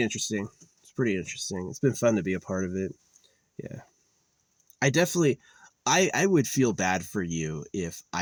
interesting. It's been fun to be a part of it. Yeah. I would feel bad for you if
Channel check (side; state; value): both; identical; correlation 1.00